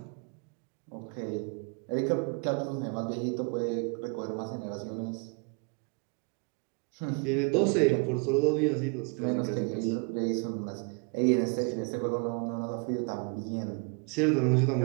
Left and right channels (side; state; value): left; quieter; 35.0 dB